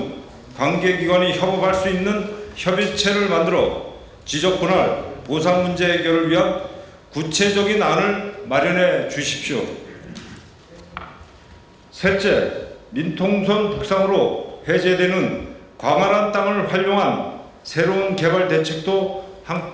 관계기관이 협업할 수 있는 협의체를 만들어 지적 분할, 보상 문제 해결을 위한 구체적인 안을 마련해 주십시오. 셋째, 민통선 북상으로 해제되는 광활한 땅을 활용한 새로운 개발 대책도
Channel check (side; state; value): both; identical; correlation 1.00